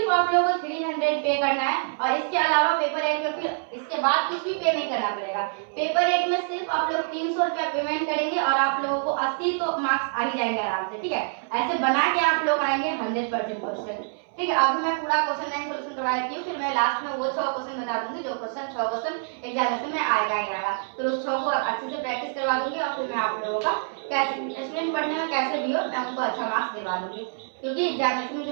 आप लोगों को 300 पे करना है, और इसके अलावा पेपर 1 में फिर इसके बाद कुछ भी पे नहीं करना पड़ेगा। पेपर 1 में सिर्फ आप लोग 300 रुपया पेमेंट करेंगे और आप लोगों को 80 तो मार्क्स आ ही जाएंगे आराम से, ठीक है। ऐसे बना के आप लोग आएंगे 100% क्वेश्चन, ठीक है। अभी मैं पूरा क्वेश्चन बैंक सोल्यूशन करवा देती हूँ, फिर मैं लास्ट में वो 6 क्वेश्चन बता दूंगी जो क्वेश्चन 6 क्वेश्चन एग्जामिनेशन में आएगा ही आएगा। फिर उस 6 को अच्छे से प्रैक्टिस करवा दूंगी, और फिर मैं आप लोगों का कैसे स्टूडेंट पढ़ने में कैसे भी हो मैं उनको अच्छा मार्क्स दिलवा दूंगी, क्योंकि एग्जामिनेशन में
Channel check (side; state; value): left; silent; 61 dB below the other